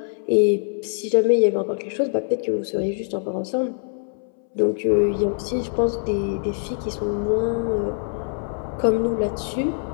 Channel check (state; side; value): silent; right; 63 dB below the other